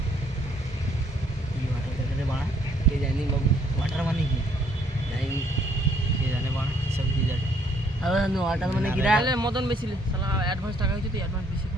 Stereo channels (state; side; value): normal; both; correlation 0.66